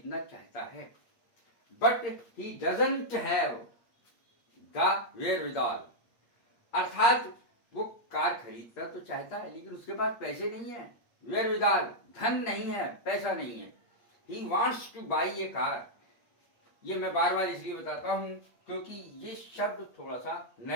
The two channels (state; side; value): late; right; 8.5 ms